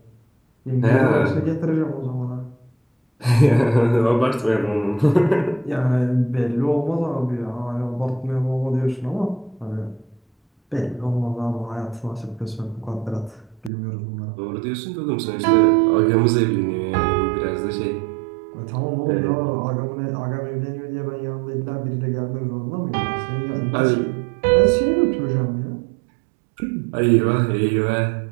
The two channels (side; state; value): left; drops out; at 13.7 s